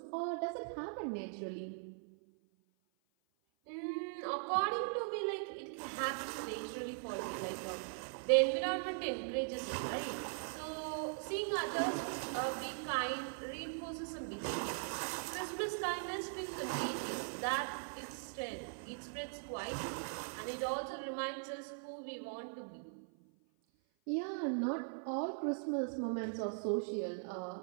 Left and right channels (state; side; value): silent; left; 51 dB below the other